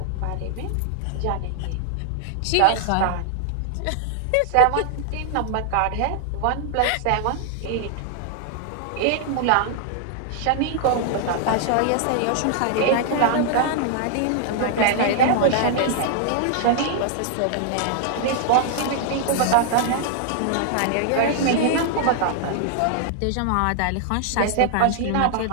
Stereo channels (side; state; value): both; different; correlation 0.00